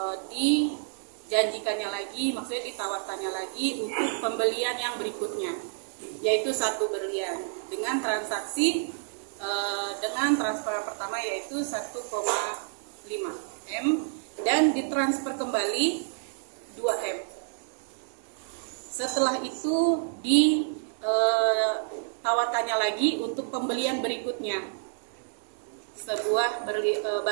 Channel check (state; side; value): silent; left; digital silence